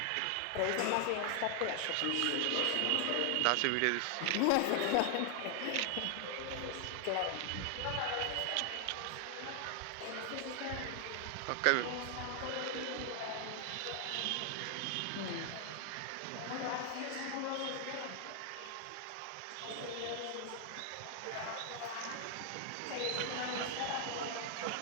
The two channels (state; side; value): different; both; correlation 0.00